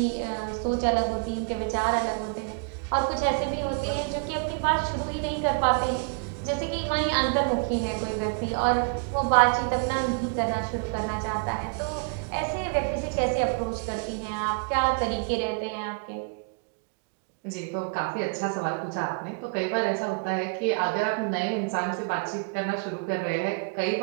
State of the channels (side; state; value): left; quieter; 38.4 dB